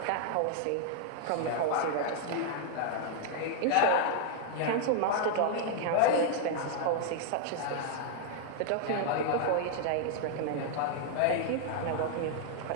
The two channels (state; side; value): different; both; correlation 0.00